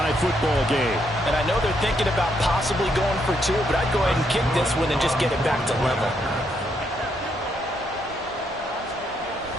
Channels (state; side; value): normal; both; correlation 0.76